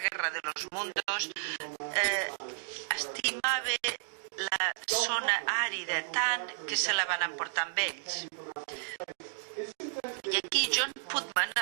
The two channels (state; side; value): silent; left; digital silence